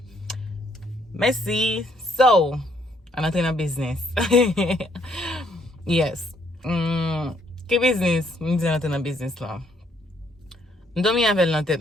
Merci. So, an entre nan business. Yes. Ki business? Mwen di an entre nan business lan. Mdomi avel nan tèt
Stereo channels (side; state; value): both; normal; correlation 0.69